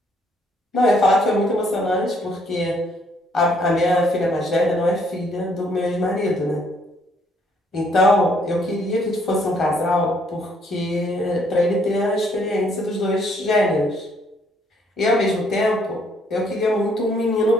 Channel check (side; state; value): both; normal; correlation 0.67